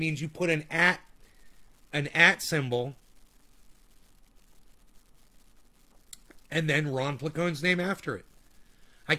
you put an @ symbol and then Ron Placone's name after it. I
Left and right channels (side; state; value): both; identical; correlation 1.00